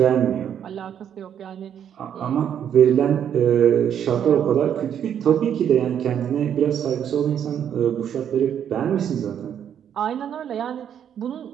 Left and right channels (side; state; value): left; quieter; 9.1 dB